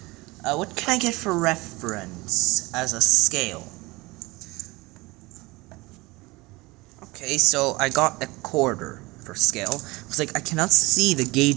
What can I get for reference as a scale? Okay, so I got a quarter for scale. It's like I cannot see the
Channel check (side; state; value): left; quieter; 22.6 dB